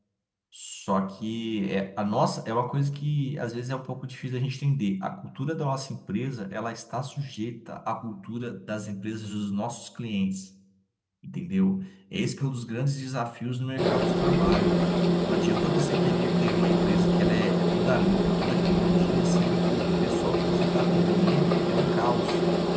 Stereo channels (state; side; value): identical; both; correlation 1.00